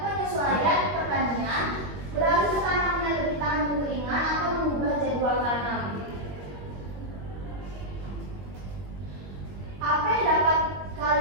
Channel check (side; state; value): left; late; 21 ms